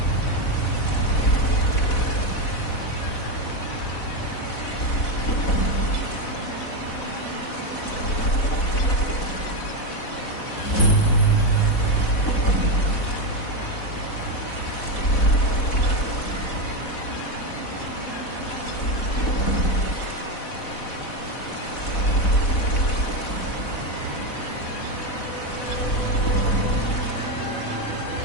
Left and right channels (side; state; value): right; late; 4.1 ms